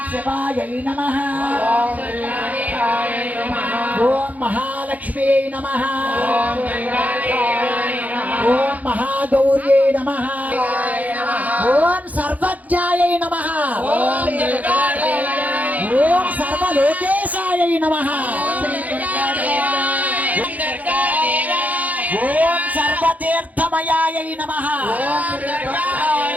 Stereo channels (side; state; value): left; late; 0.077 ms